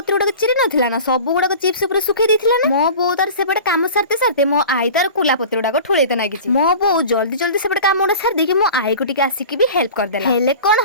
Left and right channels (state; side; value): inverted; both; correlation -0.38